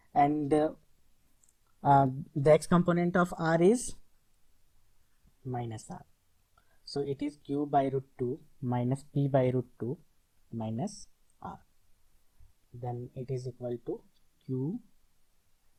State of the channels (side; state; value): both; identical; correlation 1.00